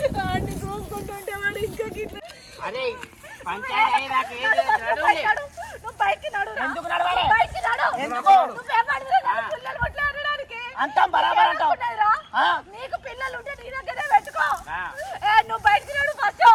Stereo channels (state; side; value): identical; both; correlation 1.00